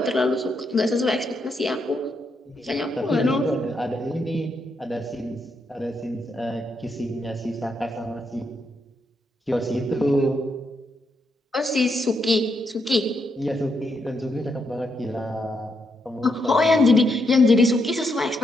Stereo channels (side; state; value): both; normal; correlation 0.80